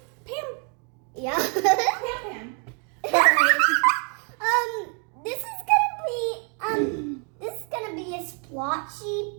Yeah. Pam. All right. This is gonna be a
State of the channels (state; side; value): quieter; left; 38.9 dB